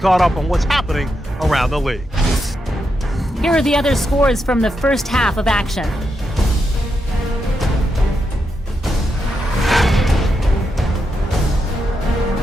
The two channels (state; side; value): normal; both; correlation 0.84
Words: caught up on what's happening around the league. Here are the other scores from the first half of action.